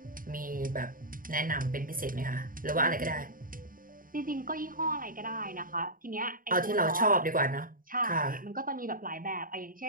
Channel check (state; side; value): late; left; 0.41 ms